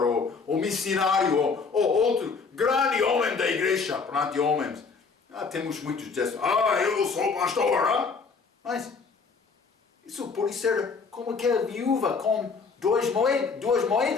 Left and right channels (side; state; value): right; quieter; 4.9 dB